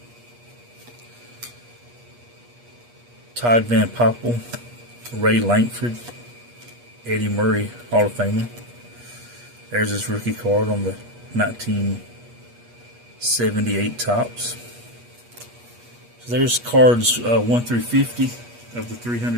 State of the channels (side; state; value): left; late; 8.4 ms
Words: Todd Van Poppel, Ray Lankford, Eddie Murray, Hall of Famer. There's his rookie card on the 1978 Topps. So there's cards 1 through 50 of the